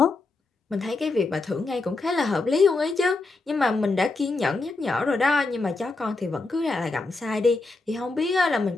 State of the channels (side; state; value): right; quieter; 3.5 dB